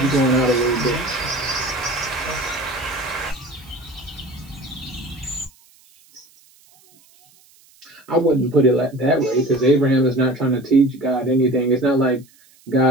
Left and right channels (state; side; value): noise; right; hiss, 29 dB below the sound